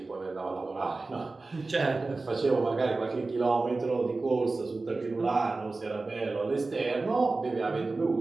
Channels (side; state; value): left; quieter; 3.5 dB